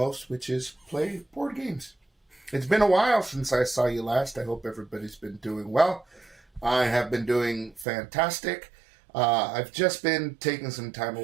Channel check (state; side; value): drops out; left; at 7.9 s